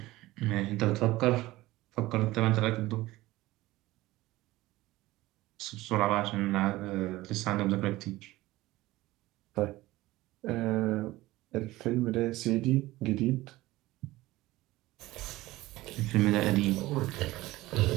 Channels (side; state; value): left; quieter; 18.1 dB